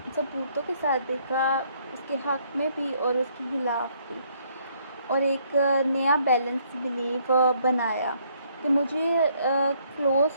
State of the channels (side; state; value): both; inverted; correlation -0.67